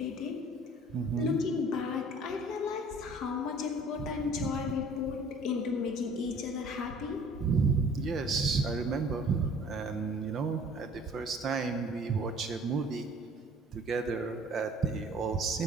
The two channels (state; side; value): normal; both; correlation 0.51